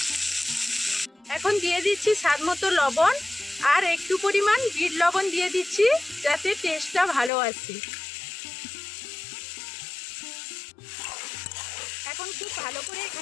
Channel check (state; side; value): drops out; right; at 7.3 s